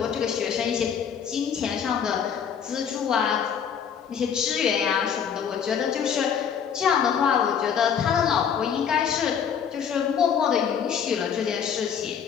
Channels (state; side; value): quieter; right; 7.6 dB